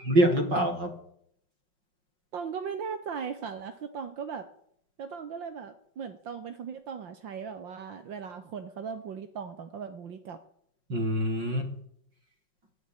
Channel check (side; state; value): left; late; 5.5 ms